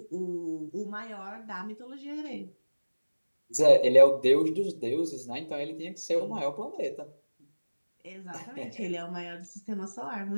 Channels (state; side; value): inverted; both; correlation -1.00